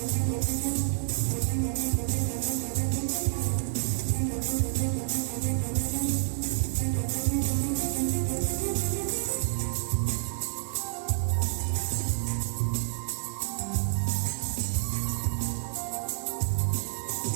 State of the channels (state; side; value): silent; left; digital silence